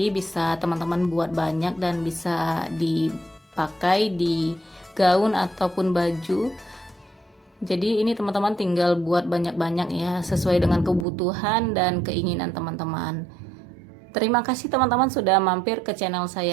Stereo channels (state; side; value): drops out; left; at 11.1 s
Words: bisa teman-teman buat banyak dan bisa dipakai di gaun ataupun baju. Jadi ini teman-teman tinggal buat banyak-banyak ya, sesuai dengan kebutuhan dan keinginan teman-teman. Terima kasih teman-teman sudah mampir ke channel